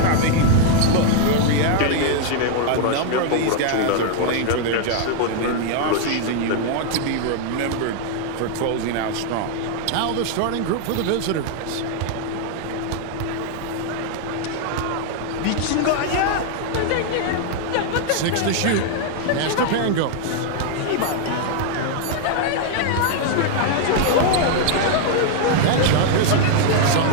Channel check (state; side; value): different; both; correlation 0.00